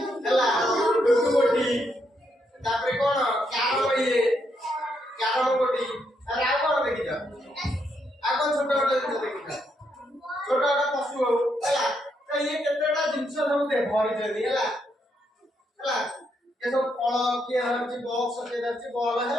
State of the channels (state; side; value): normal; both; correlation 0.77